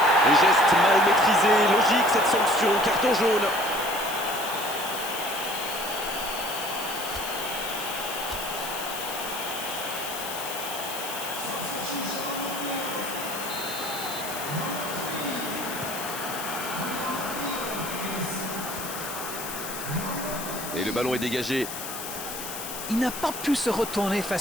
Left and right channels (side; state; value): left; noise; hiss, 8 dB below the sound